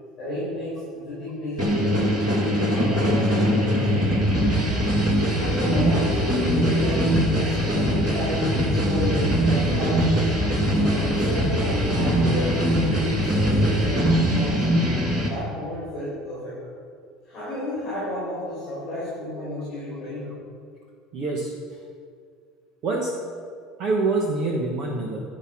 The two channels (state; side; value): normal; both; correlation 0.55